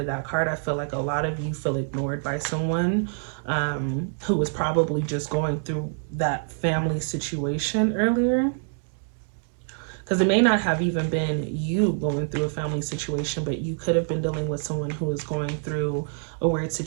that card, I feel like a lot of you feel ignored by someone who was probably just going through that family situation earlier. Because it may not have even been you going through a family situation, but you could have been dealing with someone who is going through a weird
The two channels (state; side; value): silent; left; 61 dB below the other